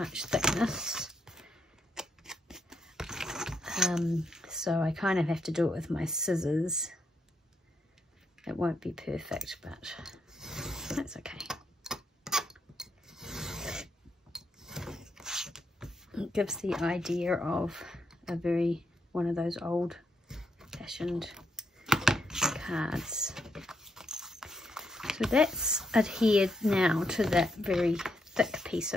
thickness. So I kind of have to do it with my scissors. It won't be perfect, but that's okay. It gives the idea of one of those old-fashioned cards. So that's adhered now to that very thick piece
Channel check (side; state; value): both; normal; correlation 0.79